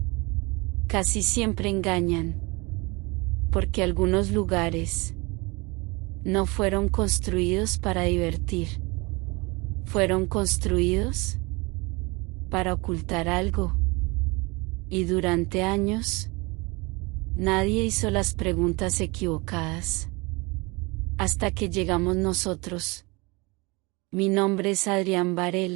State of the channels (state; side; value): quieter; left; 26.2 dB